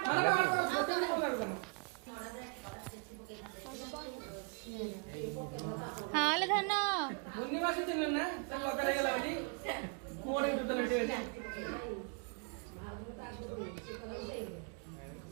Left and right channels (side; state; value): left; quieter; 38.8 dB